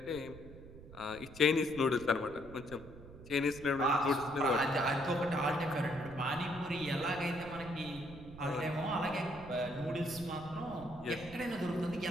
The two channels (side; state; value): right; noise; rumble, 16 dB below the sound